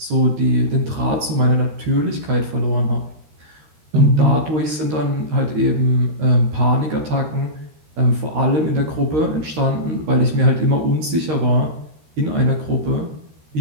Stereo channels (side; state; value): left; late; 13 ms